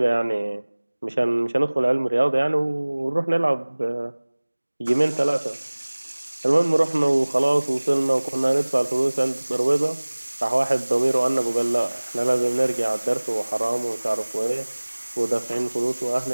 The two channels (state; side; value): inverted; both; correlation -1.00